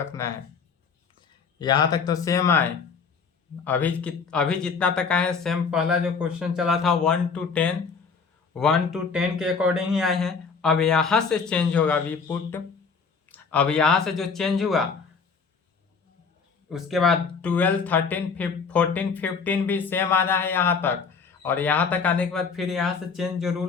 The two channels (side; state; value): right; quieter; 5.4 dB